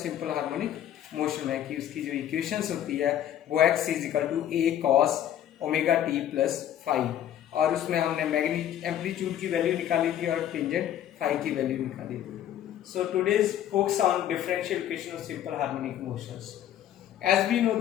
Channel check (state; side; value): quieter; right; 11.0 dB